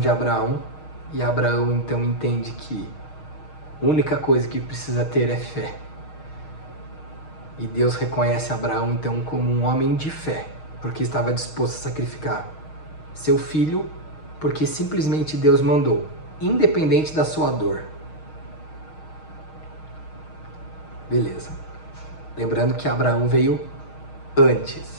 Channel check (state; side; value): late; right; 6.4 ms